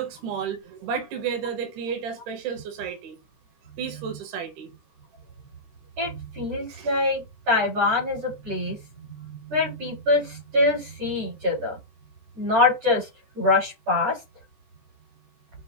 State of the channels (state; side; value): late; left; 13 ms